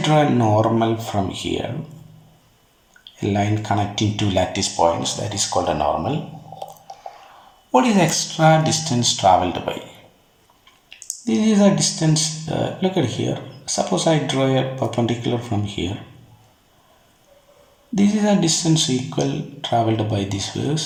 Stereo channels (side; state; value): both; identical; correlation 1.00